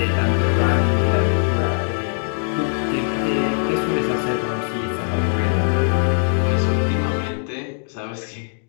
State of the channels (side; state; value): right; silent; digital silence